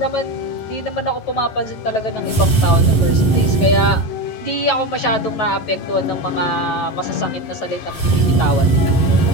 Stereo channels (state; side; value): late; right; 11 ms